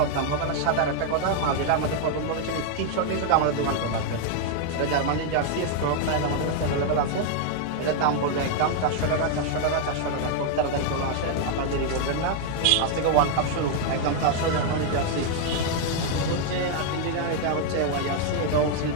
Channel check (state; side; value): different; both; correlation 0.00